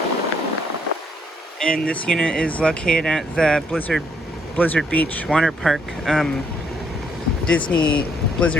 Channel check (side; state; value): both; normal; correlation 0.70